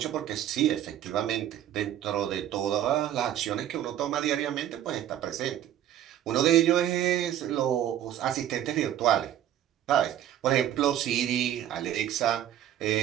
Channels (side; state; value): left; quieter; 11.4 dB